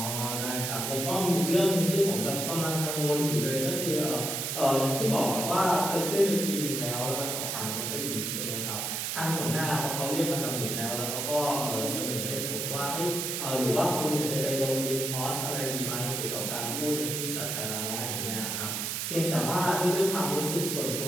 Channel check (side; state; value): right; noise; hiss, 2 dB below the sound